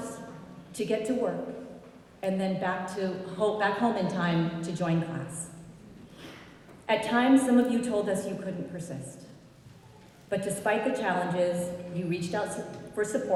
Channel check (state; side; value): identical; both; correlation 1.00